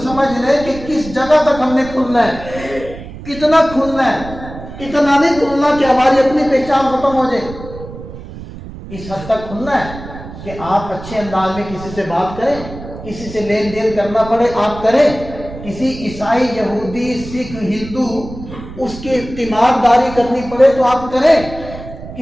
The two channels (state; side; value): noise; right; rumble, 13 dB below the sound